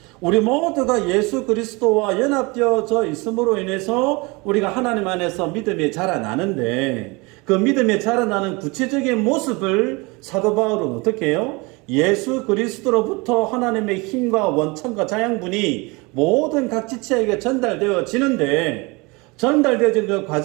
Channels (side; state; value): left; quieter; 26.4 dB